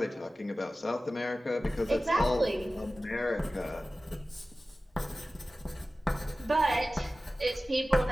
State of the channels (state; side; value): normal; both; correlation 0.96